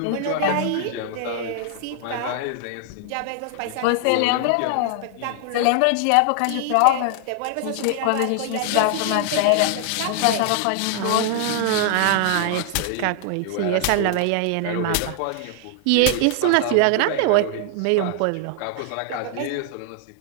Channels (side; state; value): both; different; correlation 0.00